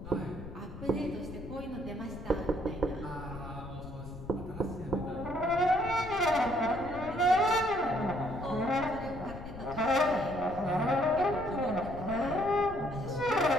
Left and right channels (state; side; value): noise; left; rumble, 12 dB below the sound